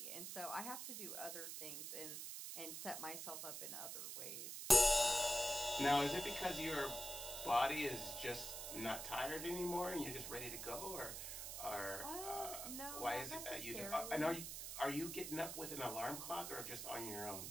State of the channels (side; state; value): right; noise; hiss, 6 dB below the sound